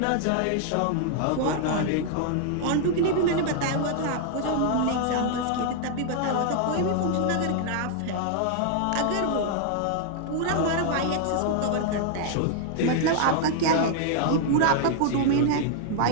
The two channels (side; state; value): both; different; correlation 0.00